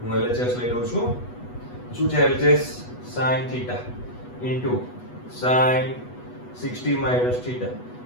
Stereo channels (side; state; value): right; late; 8.2 ms